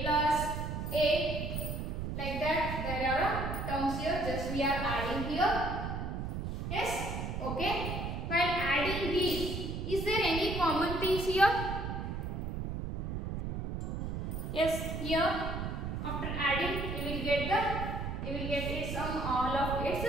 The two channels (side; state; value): right; noise; rumble, 3 dB below the sound